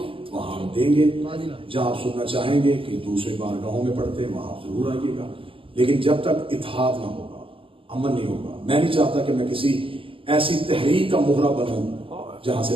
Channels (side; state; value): left; late; 0.26 ms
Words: وہاں ہم دیں گے. جہاں آپ سننا چاہیں گے کہ دوسرے بارگاہوں میں پڑھتے ہیں, وہاں آپ ضرور آئیے گا. لیکن جب تک اتحاد نہ ہوگا, امن نہیں ہوگا, میں نہیں چاہتا کہ میں کسی ایسی تحریک کا مہرہ بنوں جہاں سے